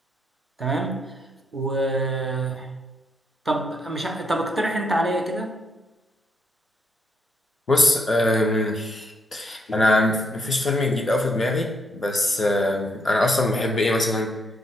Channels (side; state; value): both; normal; correlation 0.75